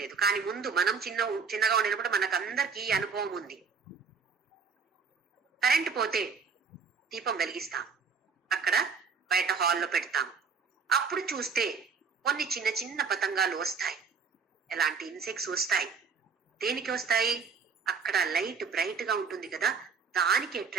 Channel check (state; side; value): quieter; left; 5.5 dB